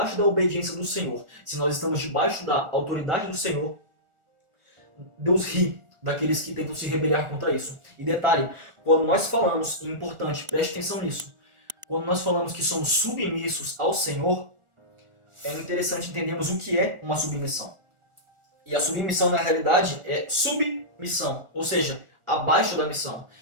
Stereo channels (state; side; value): late; left; 1.4 ms